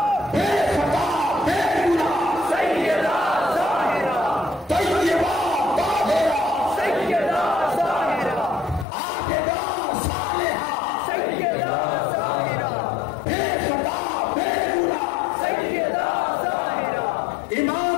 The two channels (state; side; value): drops out; right; at 8.8 s